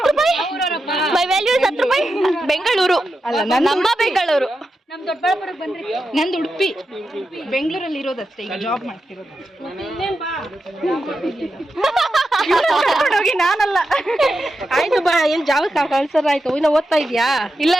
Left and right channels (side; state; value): both; normal; correlation 0.88